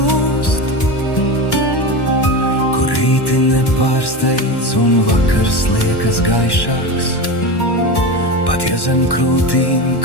kur rīti nepārsteidz un vakars liekas gaišāks, pat ja zem krūtīm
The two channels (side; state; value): right; late; 1.1 ms